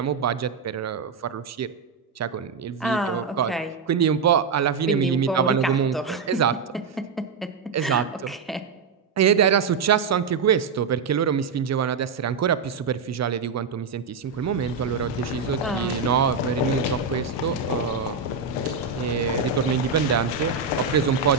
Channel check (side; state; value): left; quieter; 5.1 dB